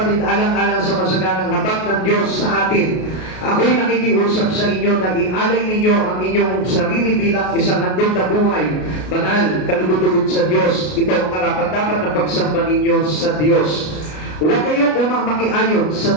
alang-alang sa masaganang habag ng Diyos sa atin, ako'y nakikiusap sa inyo na ialay ninyo ang inyong sarili bilang isang handog na buhay, banal, kalugod-lugod sa Diyos. Ito ang karapat-dapat na pagsamba ninyo sa Diyos. Huwag kayong umamakiayon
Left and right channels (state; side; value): late; right; 33 ms